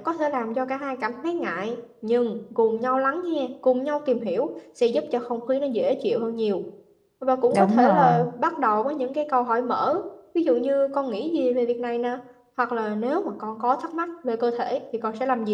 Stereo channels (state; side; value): identical; both; correlation 1.00